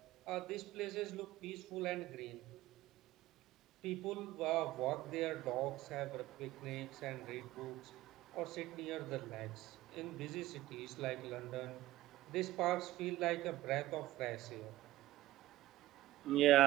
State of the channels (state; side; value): quieter; left; 16.2 dB